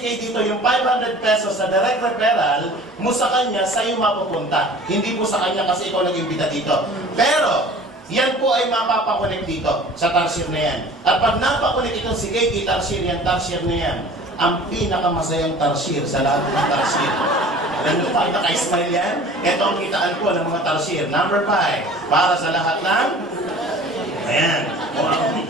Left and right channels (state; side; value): normal; both; correlation 0.45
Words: Kay dito, yung 500 pesos na direct referral mo sa kanya, sa'yo mapupunta. Hindi po sa kanya kasi ikaw nag-imbita dito. Pero, yan po ay mapapakunik dito sa Tarsier na yan. At pag napakunik itong si Kay Tarsier yan, Tarsier na yan, ang pinakamasayang Tarsier sa lahat ng Tarsier. Alam mo pa, naka-smile yan? Ito ang kitaan po ng mga Tarsier. Number 5, para sa lahat ng... Ayan.